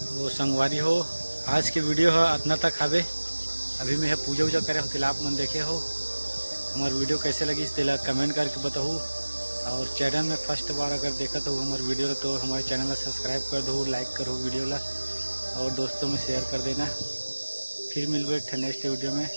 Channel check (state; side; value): inverted; both; correlation -1.00